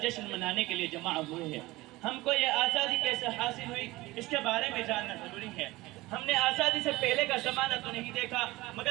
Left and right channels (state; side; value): quieter; left; 19.8 dB